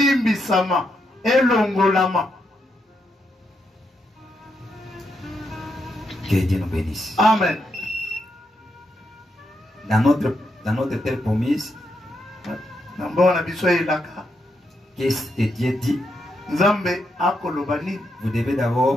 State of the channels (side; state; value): both; normal; correlation 0.81